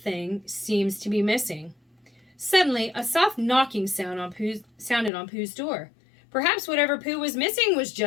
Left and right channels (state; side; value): drops out; right; at 5.1 s